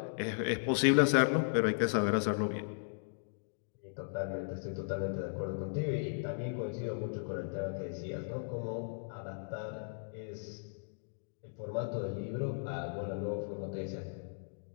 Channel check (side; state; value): right; silent; digital silence